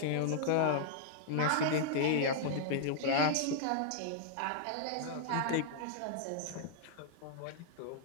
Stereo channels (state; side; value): different; both; correlation -0.01